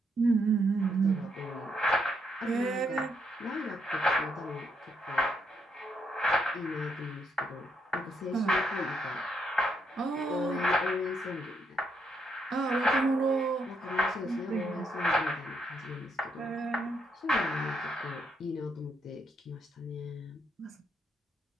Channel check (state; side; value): normal; both; correlation 0.76